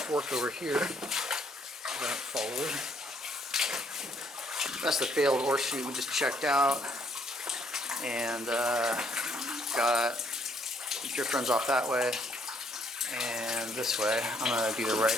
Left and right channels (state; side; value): normal; both; correlation 0.67